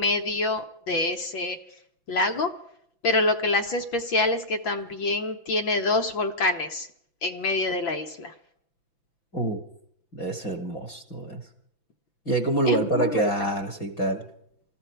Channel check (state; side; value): late; right; 5.9 ms